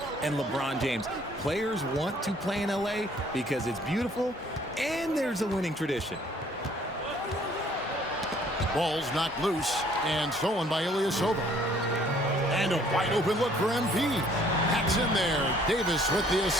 and LeBron James. Players want to play in LA because it's beautiful and there's a winning tradition. Ball's knocked loose and stolen by Ilyasova. And a wide open look for MP. That's in there. Davis with the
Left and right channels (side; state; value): both; normal; correlation 0.60